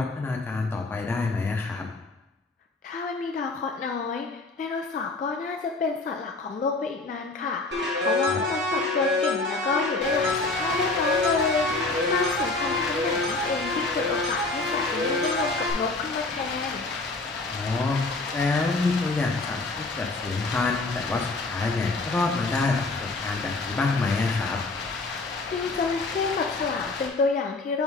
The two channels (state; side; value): quieter; right; 3.3 dB